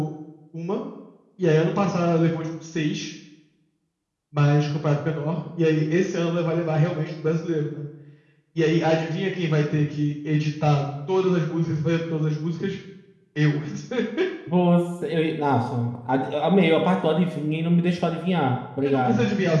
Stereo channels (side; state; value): both; identical; correlation 1.00